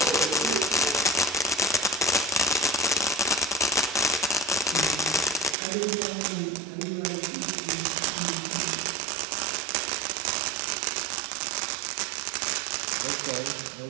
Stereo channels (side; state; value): left; drops out; at 5.6 s